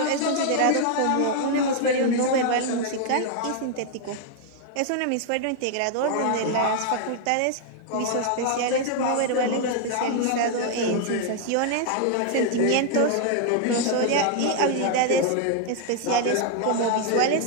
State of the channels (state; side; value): different; both; correlation 0.00